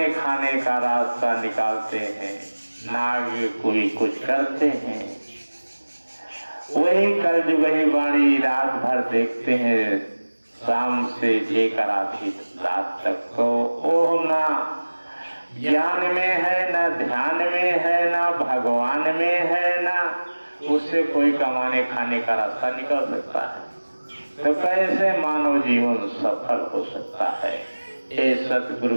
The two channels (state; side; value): inverted; both; correlation -1.00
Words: खाने का रास्ता निकालते हैं, ना कोई कुछ करते हैं। वही कलयुगी वाणी रात भर देखते हैं, शाम से लेकर आधी रात तक, तो वो ना ज्ञान में है, ना ध्यान में है, ना भगवान में है, ना उससे कोई कमाने खाने का रास्ता निकल सकता है। तो कैसे मानव जीवन सफल हो सकता है? ये